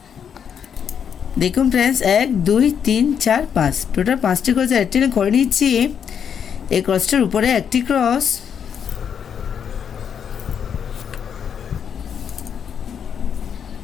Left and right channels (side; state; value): right; quieter; 7.8 dB